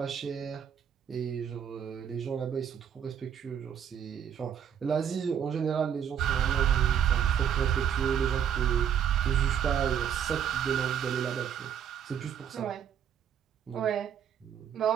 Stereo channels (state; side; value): quieter; left; 8.7 dB